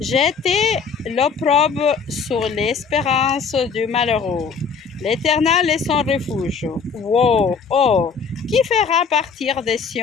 l'opprobre sur l'espérance du malheureux. L'Éternel est son refuge. Wow, oh, qui fera partir de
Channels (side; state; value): right; quieter; 5.7 dB